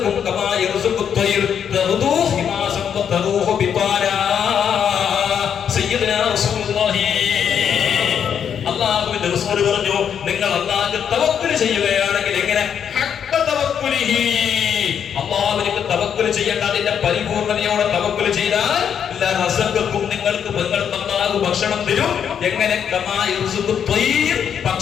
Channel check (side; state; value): right; quieter; 8.1 dB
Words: കമാ യർസുഖു ത്വയ്ർ തഗ്ദൂ ഹിമാസൻ വതറൂഹു ബിതാനാ. സയ്യിദുനാ റസൂലുള്ളാഹി അല്ലാഹുവിന്റെ റസൂൽ പറഞ്ഞു, നിങ്ങൾ അല്ലാഹുവിൽ തവക്കുൽ ചെയ്യുകയാണെങ്കിൽ എങ്ങനെ? ഹഖ്ക തവക്കുലിഹി, അല്ലാഹുവിലേക്ക് തവക്കുൽ ചെയ്യേണ്ട, അതിന്റെ പരിപൂർണതയോടെ തവക്കുൽ ചെയ്താൽ ലറസഖകും, നിങ്ങൾക്ക് അല്ലാഹു ഭക്ഷണം തരും. എങ്ങനെ? കമാ യർസുഖു ത്വയ്ർ,